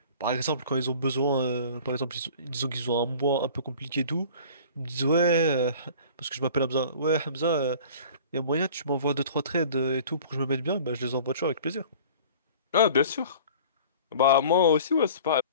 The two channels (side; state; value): both; inverted; correlation -0.45